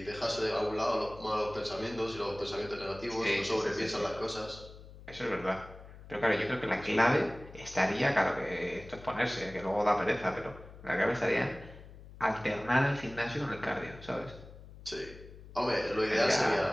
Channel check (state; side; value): noise; left; hum, 17 dB below the sound